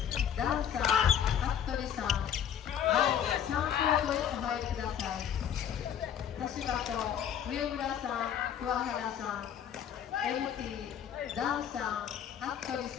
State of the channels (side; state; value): right; quieter; 9.1 dB